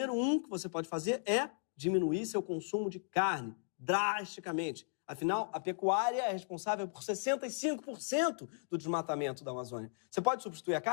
1 que você pode fazer é diminuir seu consumo de carne drasticamente. Afinal, a pecuária é responsável por 65% do desmatamento da Amazônia. Você pode substituir a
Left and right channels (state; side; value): silent; right; digital silence